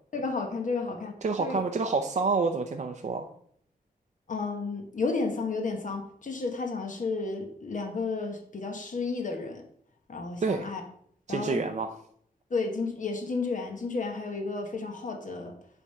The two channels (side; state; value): both; normal; correlation 0.49